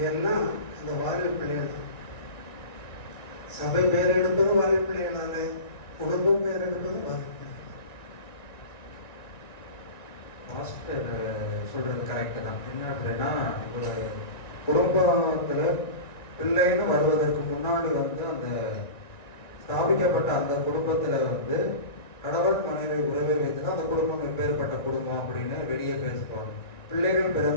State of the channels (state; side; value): late; right; 1.9 ms